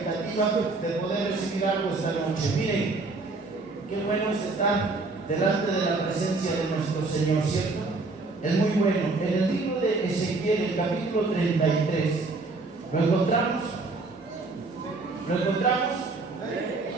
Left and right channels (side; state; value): left; quieter; 3.6 dB